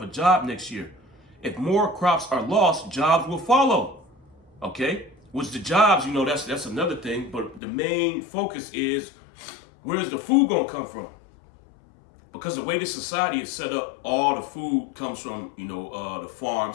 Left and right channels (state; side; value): drops out; right; at 7.6 s